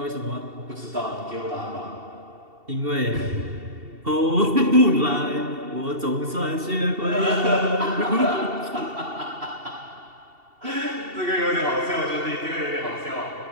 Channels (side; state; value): left; late; 2.7 ms